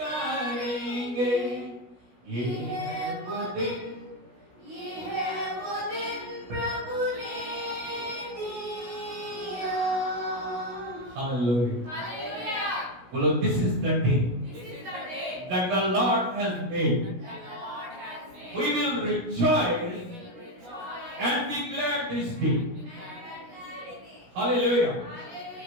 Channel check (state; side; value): late; left; 16 ms